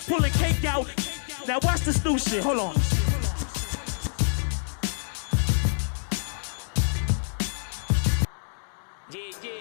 pulling cake out. Now watch this new shit, hold on.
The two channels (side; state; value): right; silent; digital silence